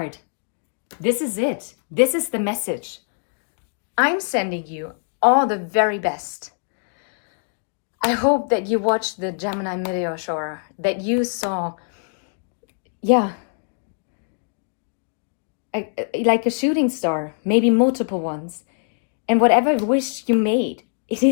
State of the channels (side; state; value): right; silent; 62 dB below the other